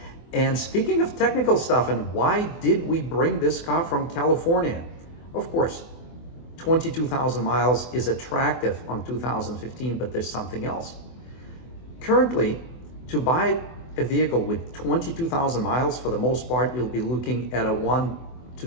And speaking of technical stuff, and why did we bring this car from California? Of course, 22,000 miles is attractive on 2015, but there's something else. Currently, to buy a vehicle with 22,000 miles, for the most part, you'll be looking at a 1 to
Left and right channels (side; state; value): right; late; 24 ms